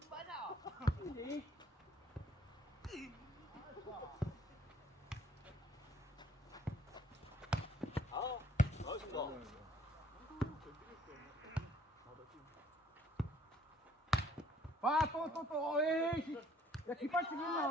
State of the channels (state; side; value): normal; both; correlation 0.61